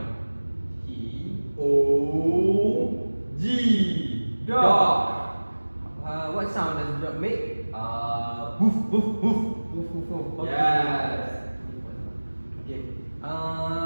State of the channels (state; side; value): inverted; both; correlation -1.00